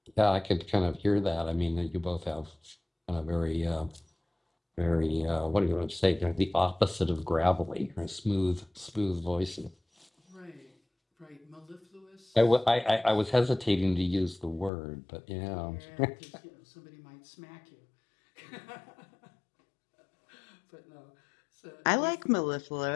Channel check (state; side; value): drops out; right; at 14.7 s